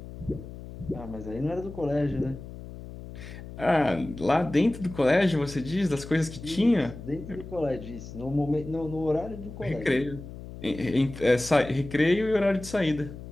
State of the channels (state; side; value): noise; left; hum, 13 dB below the sound